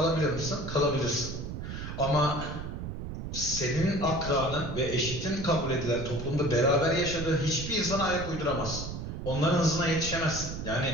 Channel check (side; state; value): right; noise; rumble, 7 dB below the sound